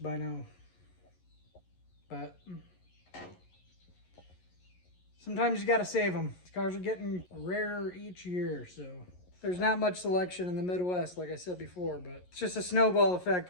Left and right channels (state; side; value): late; right; 11 ms